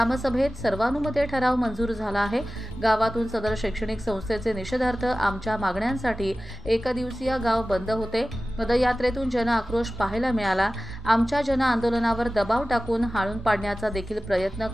सर्वानुमते ठराव मंजूर झाला आहे। गावातून सदर शैक्षणिक संस्थेचे निषेधार्थ आमच्या मागण्यांसाठी एकदिवसीय गाव बंद होते। पदयात्रेतून जन आक्रोश पाहायला मिळाला। आमच्या जन आंदोलनावर दबाव टाकून हाणून पाडण्याचा देखील प्रयत्न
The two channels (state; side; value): normal; both; correlation 0.96